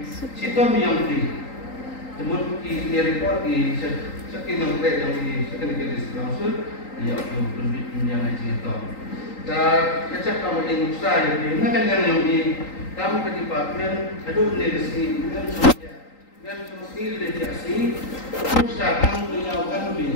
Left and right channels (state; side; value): late; right; 3.8 ms